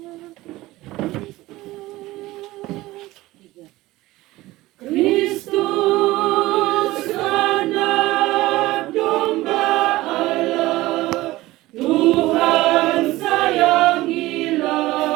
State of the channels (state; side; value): quieter; left; 18.1 dB